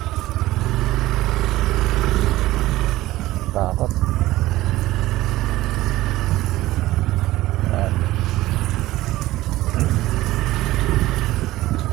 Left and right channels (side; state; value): left; quieter; 16.8 dB